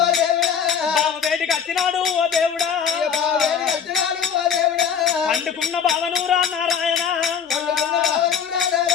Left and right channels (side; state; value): right; quieter; 7.4 dB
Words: బావ వేటికి వచ్చినాడు ఓ దేవుడా పండుకున్న బావను రా నారాయణ